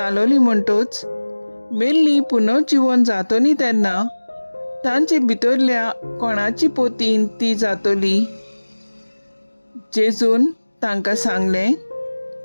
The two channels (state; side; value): inverted; both; correlation -1.00